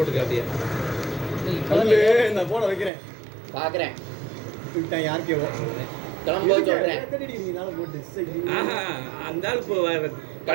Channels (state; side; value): drops out; left; at 2.9 s